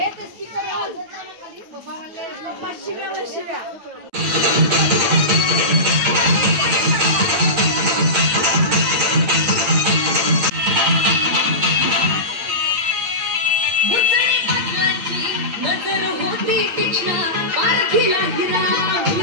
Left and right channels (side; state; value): left; late; 8.7 ms